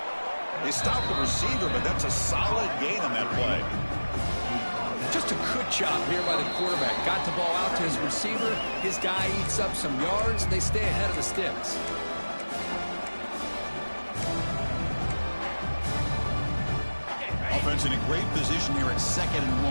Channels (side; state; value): both; inverted; correlation -1.00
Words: They stop the receiver, but that's a solid gain on that play. Just a good job here by the quarterback. Got the ball out to his receiver. His guy eats up some yards. They stay ahead of the sticks. Offense in a great position here at 2nd and